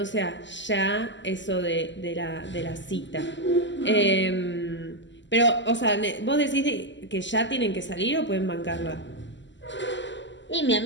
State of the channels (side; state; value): right; late; 0.54 ms